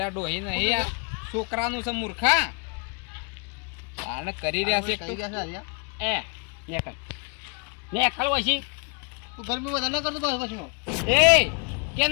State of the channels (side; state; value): right; quieter; 36.0 dB